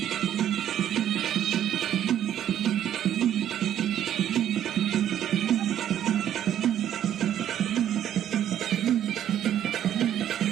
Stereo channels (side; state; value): left; quieter; 10.7 dB